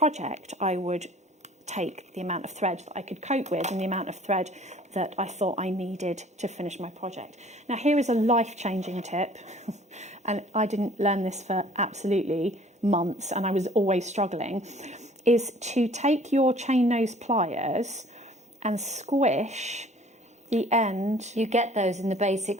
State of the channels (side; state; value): both; normal; correlation 0.52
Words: I would take the amount of thread that I could cope with and the amount of thread that I thought I needed to finish my project. Now, here is a life-changing tip, and I didn't learn this for absolutely months, and I was always struggling, is to take your chain nose pliers and squish the end. You get those in the